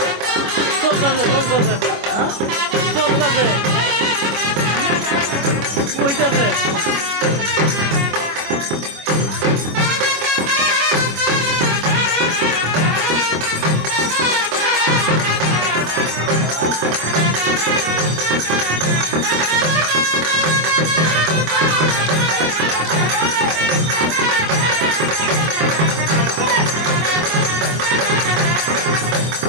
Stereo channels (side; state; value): left; late; 25 ms